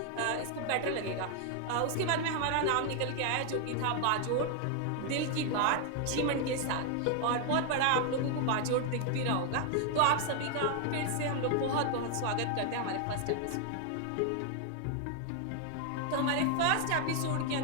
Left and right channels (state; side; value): different; both; correlation 0.00